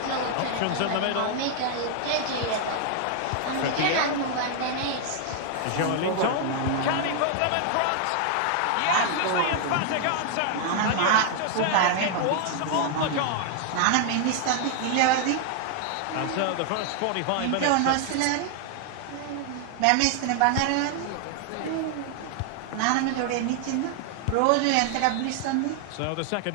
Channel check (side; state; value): both; different; correlation 0.00